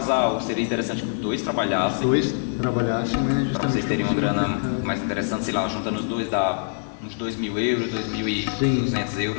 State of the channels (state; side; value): silent; right; digital silence